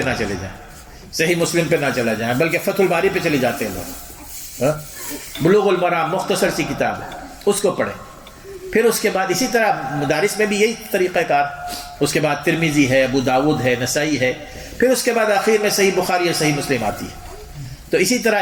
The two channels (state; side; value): identical; both; correlation 1.00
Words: نہ چلے جائیں، صحیح مسلم پہ نہ چلا جائیں، بلکہ فتح الباری پہ چلے جاتے ہیں لوگ. بلوغ المرام مختصر سی کتاب ہے، اس کو پڑھیں. پھر اس کے بعد اسی طرح مدارس میں بھی یہی طریقہ کار. اس کے بعد ترمذی ہے، ابو داود ہے، نسائی ہے. پھر اس کے بعد آخر میں صحیح بخاری اور صحیح مسلم آتی ہے. تو اسی طرح